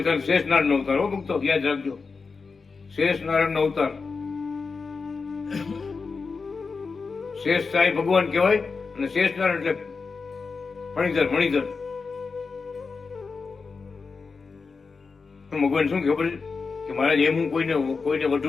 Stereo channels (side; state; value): right; quieter; 4.7 dB